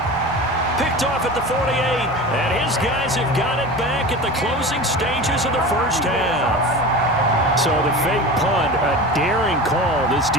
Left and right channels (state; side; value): normal; both; correlation 0.32